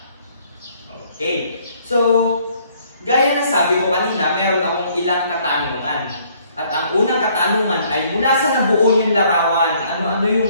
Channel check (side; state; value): both; inverted; correlation -0.63